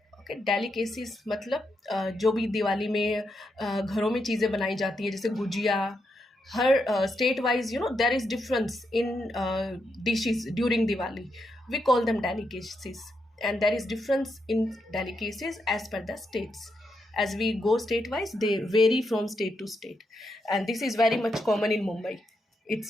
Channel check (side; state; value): both; normal; correlation 0.82